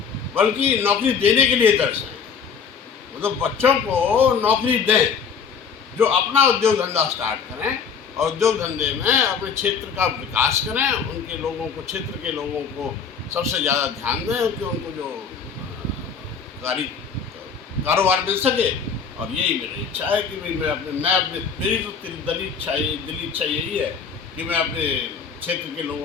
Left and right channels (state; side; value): quieter; right; 6.3 dB